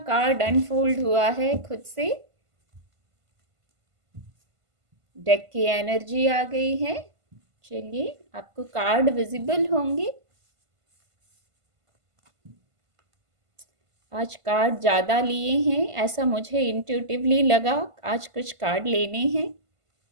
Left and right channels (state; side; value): late; left; 1.5 ms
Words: कार्ड अनफोल्ड हुआ है खुद से। डेक की एनर्जी आ गई है। चलिए, आपको कार्ड विजिबल होंगे। आज कार्ड ज़्यादा लिए हैं, ऐसा मुझे इंट्यूटिवली लगा। आज कुछ कार्ड लेने हैं।